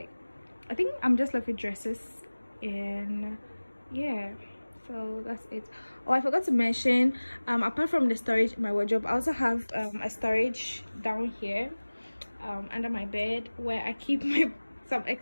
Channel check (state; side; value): inverted; both; correlation -1.00